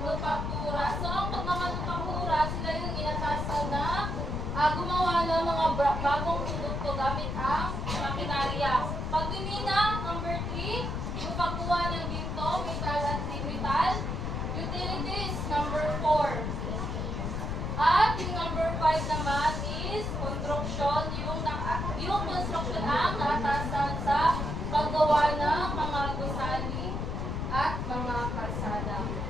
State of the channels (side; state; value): left; noise; rumble, 2 dB below the sound